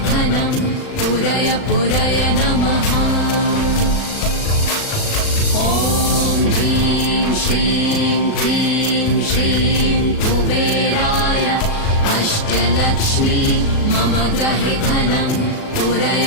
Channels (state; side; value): late; right; 37 ms